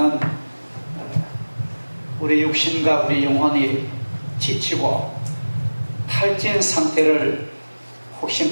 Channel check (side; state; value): both; inverted; correlation -1.00